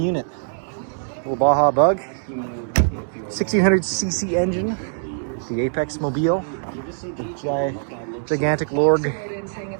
Little Baja Bug, 1600cc engine, the Apex Mobile, the gigantic Lorg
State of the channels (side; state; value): left; silent; digital silence